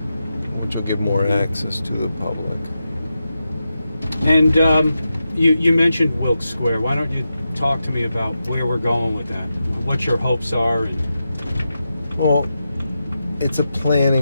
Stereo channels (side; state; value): both; inverted; correlation -0.89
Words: which will give more access to the public. And you mentioned Wilkes Square. Why don't you talk to me about where we're going with that? What your hopes are? Well, it's a